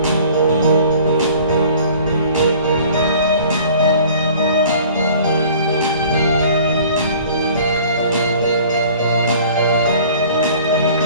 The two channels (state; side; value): inverted; both; correlation -0.49